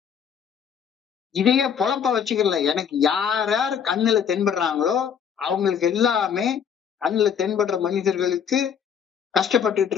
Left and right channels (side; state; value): right; quieter; 7.7 dB